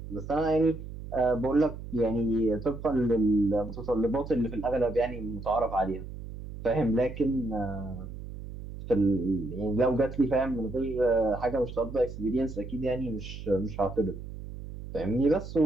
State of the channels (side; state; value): right; noise; hum, 11 dB below the sound